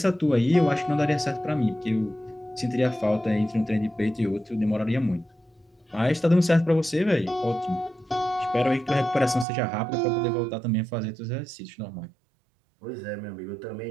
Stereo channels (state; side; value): drops out; left; at 9.5 s